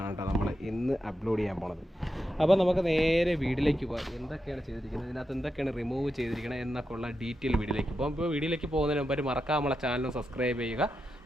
കേട്ടോ നമ്മൾ ഇന്ന് അപ്ലോഡ് ചെയ്യാൻ പോണത്. അപ്പോൾ നമുക്ക് നേരെ വീഡിയോയിലേക്ക് പോകാം. എന്തൊക്കെയാണ് ചെയ്തിരിക്കുന്നത്, ഇതിനകത്ത് എന്തൊക്കെയാണ് റിമൂവ് ചെയ്തിരിക്കുന്നത് എന്നൊക്കെ ഉള്ള ഡീറ്റെയിൽ വീഡിയോയിലേക്ക് പോകാം. ഇപ്പോൾ വീഡിയോയിലേക്ക് പോകുന്നതിന് മുമ്പ് മറക്കാതെ നമ്മളെ ചാനൽ സബ്സ്ക്രൈബ് ചെയ്യുക,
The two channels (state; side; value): normal; both; correlation 0.87